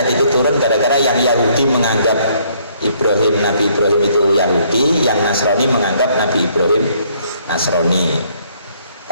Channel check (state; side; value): inverted; both; correlation -0.66